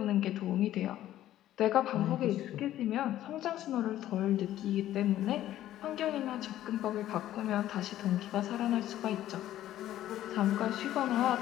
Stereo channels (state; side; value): quieter; right; 13.1 dB